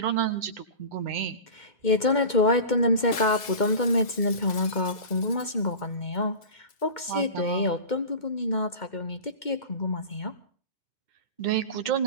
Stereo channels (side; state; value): right; late; 2.2 ms